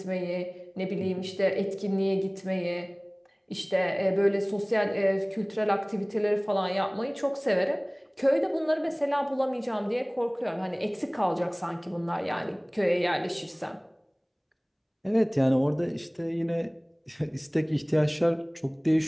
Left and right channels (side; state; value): both; identical; correlation 1.00